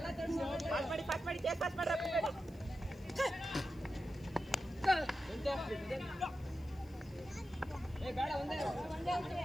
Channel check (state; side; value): noise; left; hiss, 28 dB below the sound